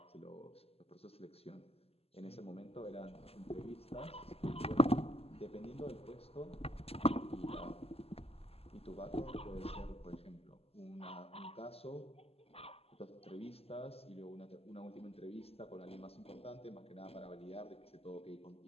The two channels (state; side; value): late; right; 0.29 ms